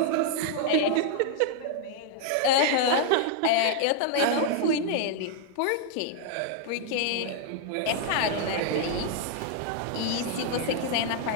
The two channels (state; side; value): different; both; correlation 0.00